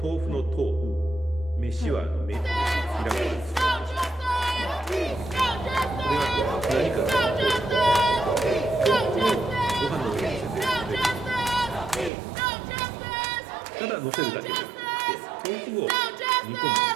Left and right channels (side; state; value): left; drops out; at 12.1 s